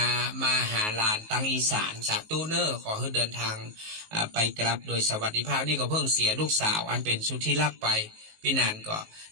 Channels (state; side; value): late; left; 19 ms